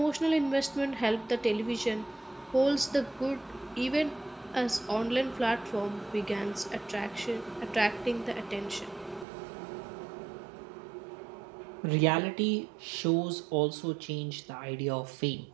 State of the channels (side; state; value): left; drops out; at 9.2 s